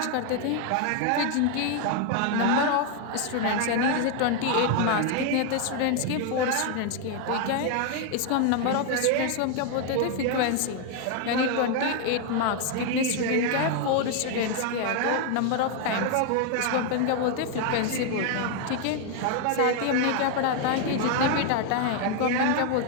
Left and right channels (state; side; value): different; both; correlation 0.01